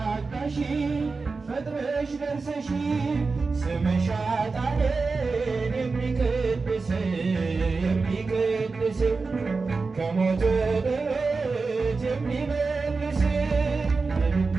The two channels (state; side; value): quieter; left; 4.2 dB